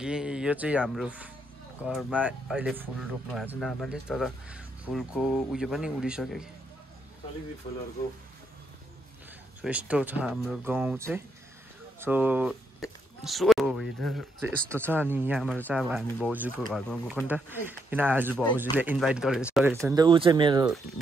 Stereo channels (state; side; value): normal; both; correlation 0.77